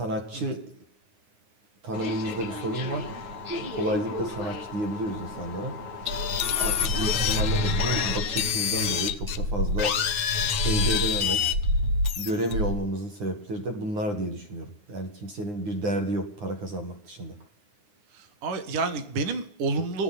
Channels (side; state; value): left; late; 9.7 ms